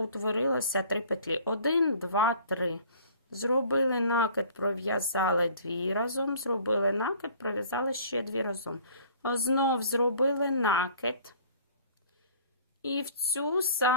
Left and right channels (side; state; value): both; inverted; correlation -0.51